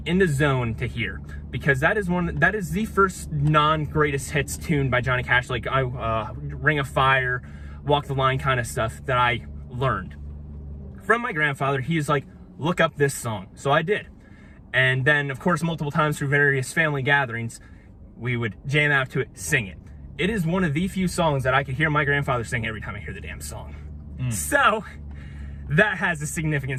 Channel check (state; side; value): identical; both; correlation 1.00